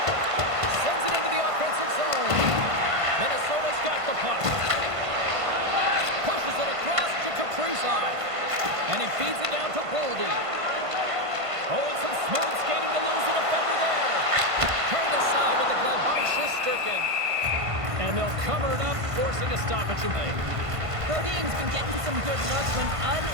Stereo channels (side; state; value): left; late; 1.5 ms